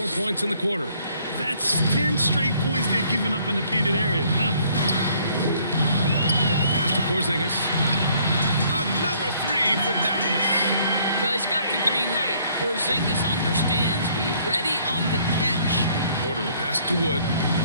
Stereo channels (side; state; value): both; inverted; correlation -0.63